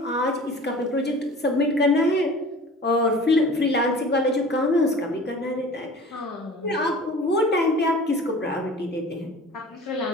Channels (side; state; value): both; normal; correlation 0.42